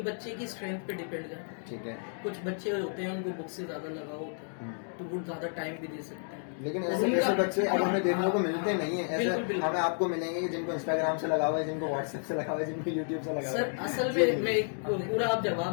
बच्चे की स्ट्रेंथ पे डिपेंड करता है। ठीक है। कुछ बच्चे होते हैं उनको बुक से ज्यादा लगाव होता है, तो वो ज्यादा टाइम भी दे सकते हैं। लेकिन ऐसे बच्चे अब हमें देखने को मिलते नहीं है। बिल्कुल, ऐसे बिल्कुल। हमें आपको मिलेंगे कि जिनको इंस्टाग्राम से लगा हुआ है, जिनको व्हाट्सएप से लगा हुआ है, जिनको यूट्यूब से लगा हुआ सर है। असल जी, में मैं पूरा आप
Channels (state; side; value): silent; right; 57 dB below the other